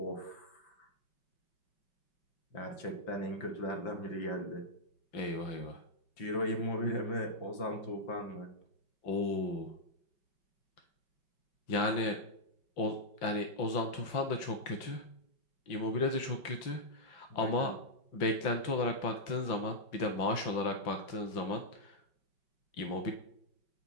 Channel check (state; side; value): late; right; 5.8 ms